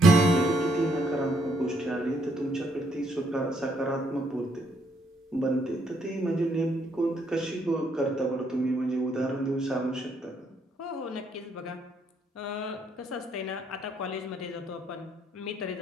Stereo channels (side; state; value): both; normal; correlation 0.71